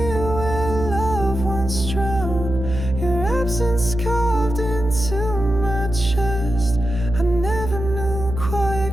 where love once drowned. Your absence carved into my chest. I never knew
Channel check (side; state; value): right; noise; hum, 6 dB below the sound